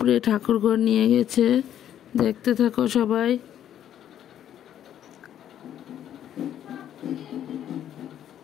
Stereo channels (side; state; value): right; quieter; 10.6 dB